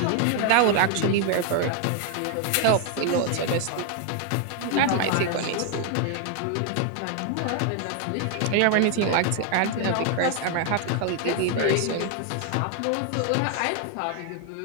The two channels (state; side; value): different; both; correlation 0.00